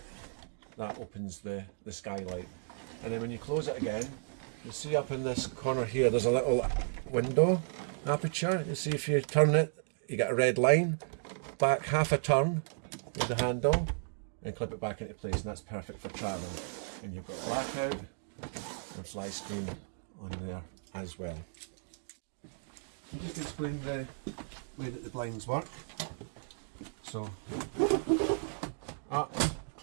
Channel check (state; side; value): silent; left; digital silence